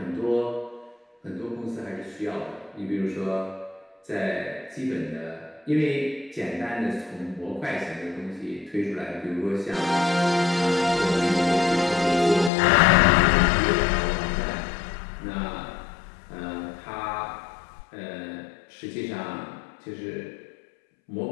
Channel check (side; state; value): right; drops out; at 12.5 s